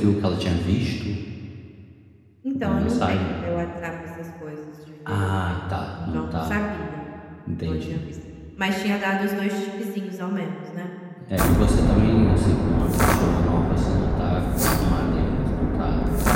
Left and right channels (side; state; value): both; identical; correlation 1.00